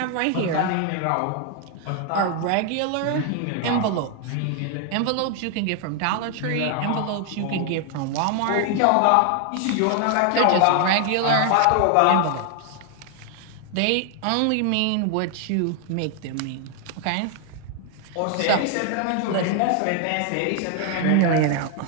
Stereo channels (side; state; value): both; different; correlation 0.00